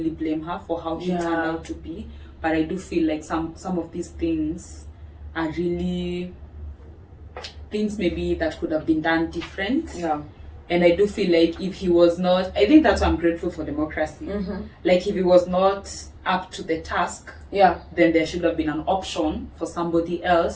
blame her for how she turned out to be. But I do feel like some of these things are really things maybe that could have been done different. Yeah. And I do feel like if he was not, I think that's why I'm grateful for democracy. Like if he was not up to the task, then there should have been an option for somebody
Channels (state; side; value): identical; both; correlation 1.00